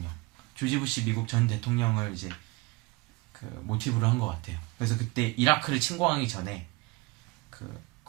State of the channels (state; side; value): quieter; left; 23.3 dB